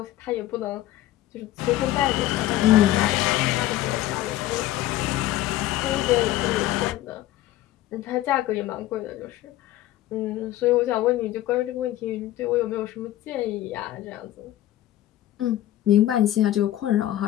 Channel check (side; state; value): right; quieter; 14.3 dB